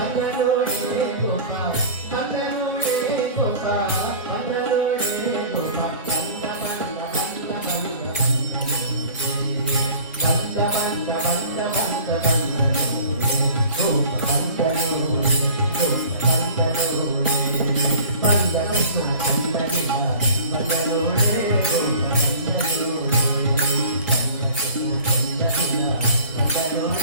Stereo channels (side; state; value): both; inverted; correlation -0.45